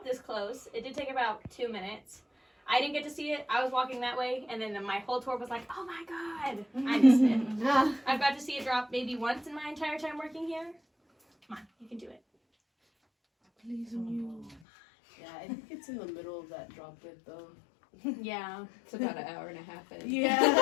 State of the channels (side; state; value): right; drops out; at 14.6 s